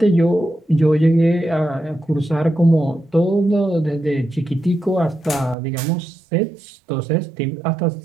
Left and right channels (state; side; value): drops out; left; at 5.6 s